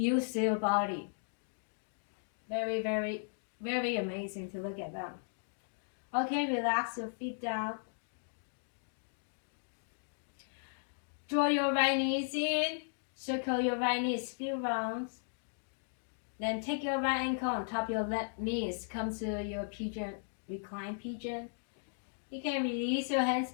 their body. Very, very, very amazing to look at them. Okay, relax your feet down. Draw your right knees in. Circle your right knees few rounds. Then take your right ankle on top of your left knees. Come to your pigeon, recline pigeon. You can release your hands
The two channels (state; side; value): silent; right; digital silence